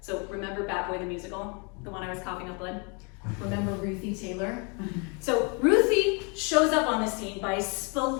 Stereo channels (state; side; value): quieter; right; 33.9 dB